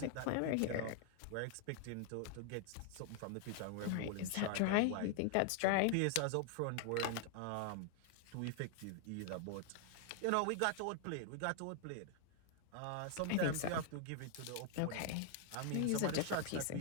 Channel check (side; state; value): both; different; correlation 0.00